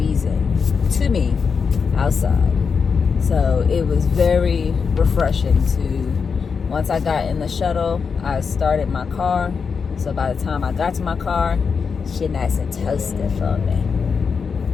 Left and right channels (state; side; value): quieter; right; 5.7 dB